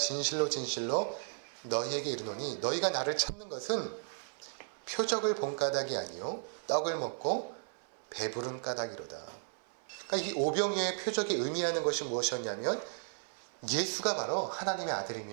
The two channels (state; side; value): silent; left; 55 dB below the other